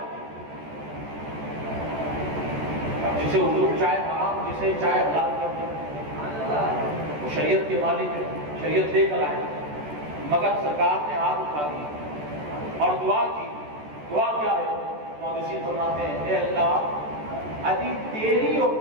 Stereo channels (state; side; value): late; left; 14 ms